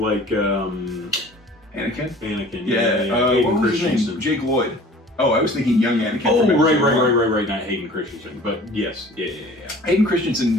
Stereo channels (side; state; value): both; normal; correlation 0.47